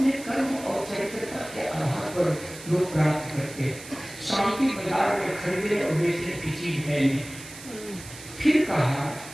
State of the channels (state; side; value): noise; right; hiss, 15 dB below the sound